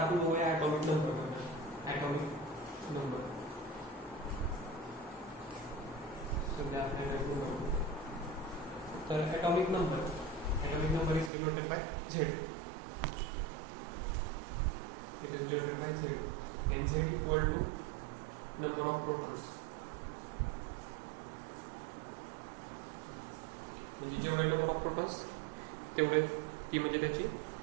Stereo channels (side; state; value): left; drops out; at 11.3 s